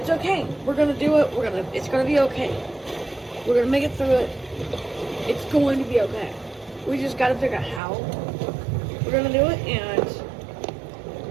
okay. We're gonna do it. It's gonna be okay. We're gonna make it through it. It's going to be okay. We just gotta figure out how we're gonna do it and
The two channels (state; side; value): drops out; left; at 7.8 s